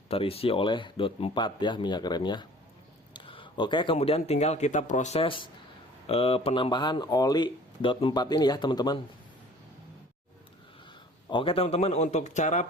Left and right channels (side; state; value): both; normal; correlation 0.50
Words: terisi oleh dot 4 ya minyak remnya. Oke, kemudian tinggal kita proses penambahan oli dot 4 ini ya teman-teman. Oke teman-teman, untuk cara